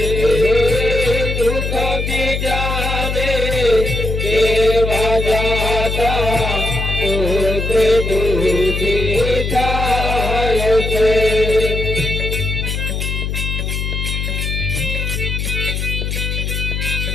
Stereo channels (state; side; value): noise; left; hum, 2 dB below the sound